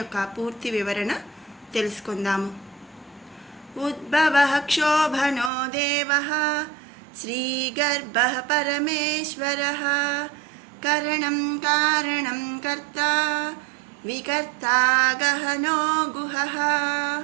పూర్తి వివరణ తెలుసుకుందాము. ఉద్భవః క్షోభనో దేవః శ్రీగర్భః పరమేశ్వరః కరణం కారణం కర్తా వికర్తా గహనో గుహః.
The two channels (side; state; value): left; drops out; at 5.5 s